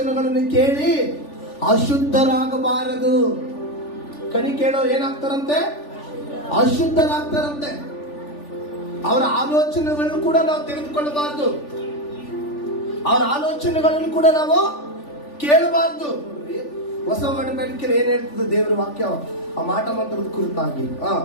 ಕೇಳಿ ಅಶುದ್ಧರಾಗಬಾರದು. ಕಣಿ ಕೇಳೋ ಏನಾಗ್ತಾರಂತೆ? ಅಶುದ್ಧರಾಗ್ತಾರಂತೆ. ಅವರ ಆಲೋಚನೆಗಳನ್ನು ಕೂಡ ನಾವು ತೆಗೆದುಕೊಳ್ಳಬಾರದು, ಅವರ ಆಲೋಚನೆಗಳನ್ನು ಕೂಡ ನಾವು ಕೇಳಬಾರದು. ಹೊಸ ಒಡಂಬಡಿಕೆಯಲ್ಲಿ ಏನ್ ಹೇಳ್ತದೆ ದೇವರ ವಾಕ್ಯ? ಆ ಮಾಟ ಮಂತ್ರದ ಕುರಿತಾಗಿ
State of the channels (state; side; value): late; right; 3.4 ms